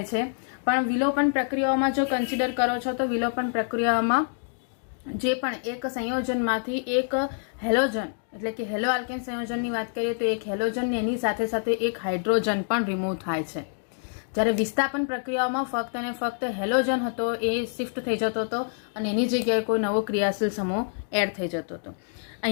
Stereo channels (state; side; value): silent; right; 60 dB below the other